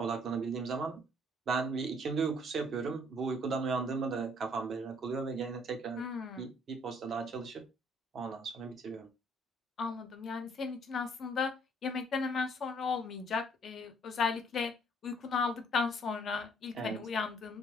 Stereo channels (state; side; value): normal; both; correlation 0.62